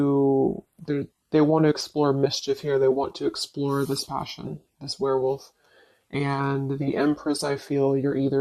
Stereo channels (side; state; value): both; identical; correlation 1.00